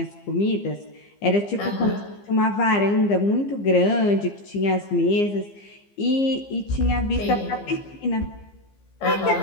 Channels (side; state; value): right; late; 15 ms